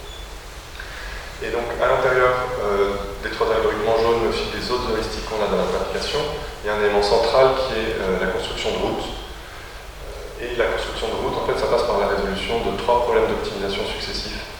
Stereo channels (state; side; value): identical; both; correlation 1.00